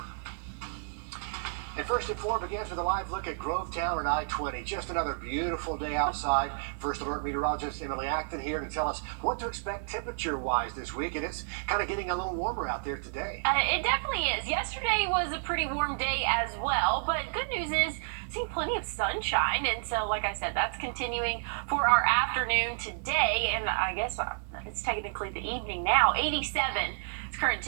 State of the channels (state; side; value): silent; left; 57 dB below the other